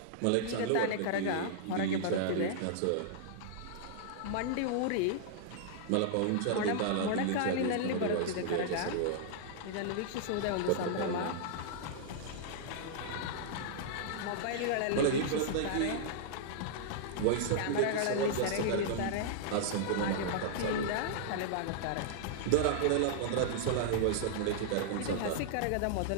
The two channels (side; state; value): both; different; correlation -0.01